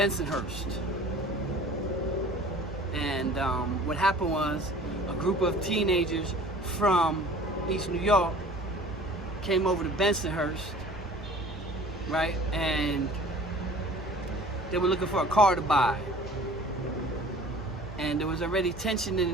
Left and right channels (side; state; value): both; normal; correlation 0.46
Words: and what happened was a group of teenagers from East New York came over to Bensonhurst, right, and they were looking for a car to buy. And there was already tension in the